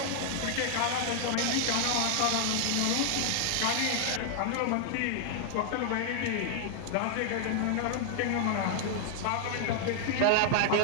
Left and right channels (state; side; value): different; both; correlation 0.00